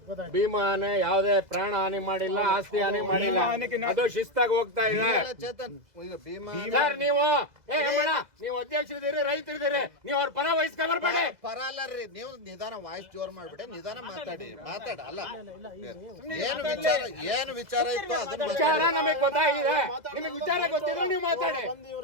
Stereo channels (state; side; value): late; left; 2.0 ms